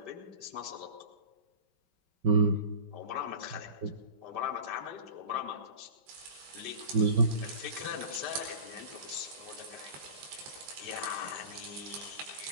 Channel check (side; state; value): left; late; 5.1 ms